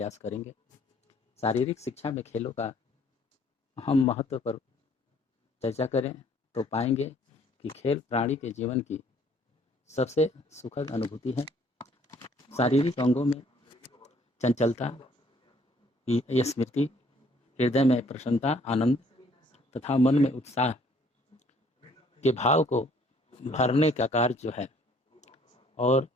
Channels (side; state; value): both; normal; correlation 0.61